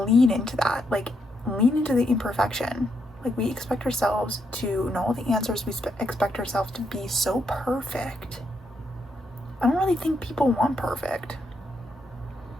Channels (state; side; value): normal; both; correlation 0.79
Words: into that. Like, lean into the imperfection. Like, we expect ourselves to know all the answers. We expect ourselves to be so perfect. I don't really think people want perfect.